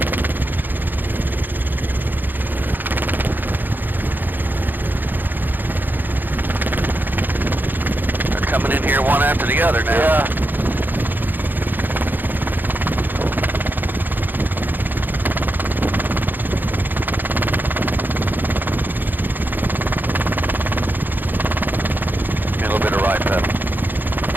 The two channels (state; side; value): late; left; 0.089 ms